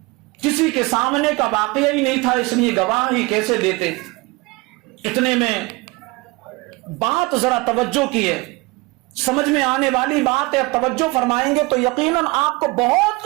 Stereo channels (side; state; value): left; quieter; 23.9 dB